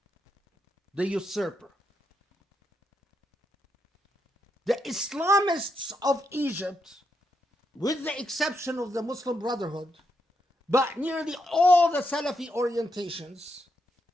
the usurper. The Islamists of Egypt, with the exception of the Muslim Brotherhood, but nearly all the Salafi orientations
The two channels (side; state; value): both; normal; correlation 0.81